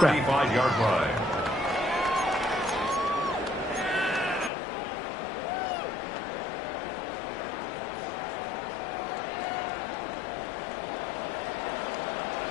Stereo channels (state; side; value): drops out; right; at 4.5 s